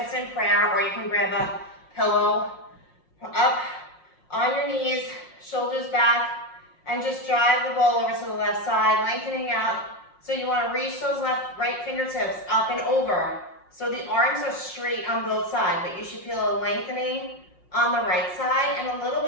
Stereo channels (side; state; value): right; late; 5.6 ms